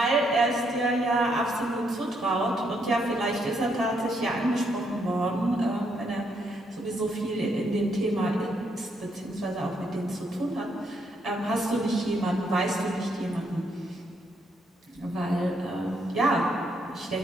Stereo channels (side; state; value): both; normal; correlation 0.75